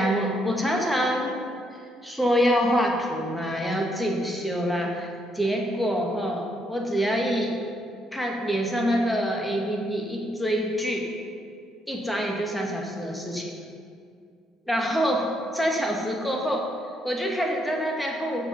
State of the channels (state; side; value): normal; both; correlation 0.75